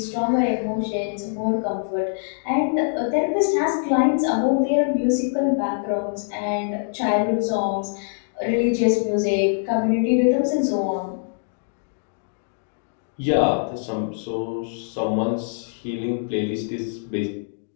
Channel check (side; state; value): right; silent; digital silence